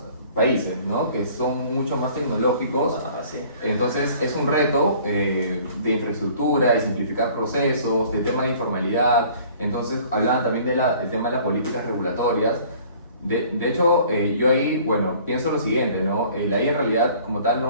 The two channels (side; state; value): both; inverted; correlation -0.52